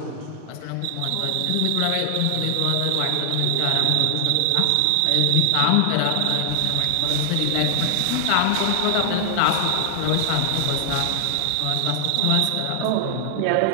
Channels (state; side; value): different; both; correlation 0.00